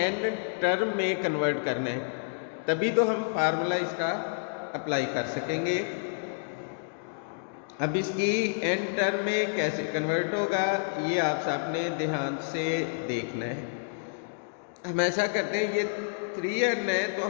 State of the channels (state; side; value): silent; right; digital silence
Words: टर्म में कन्वर्ट करना है, तभी तो हम फार्मूला इसका अप्लाई कर सकेंगे। अब इसकी n टर्म में कैसे कन्वर्ट होगा, ये आप सबने ध्यान से देखना है। हम ऐसा करते हैं, ये 3n है तो